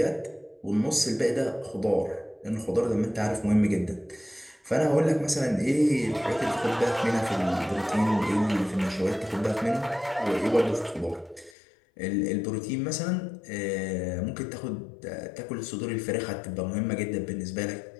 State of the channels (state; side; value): drops out; right; at 11.6 s